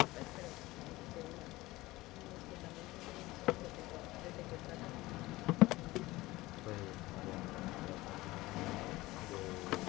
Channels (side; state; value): right; quieter; 19.2 dB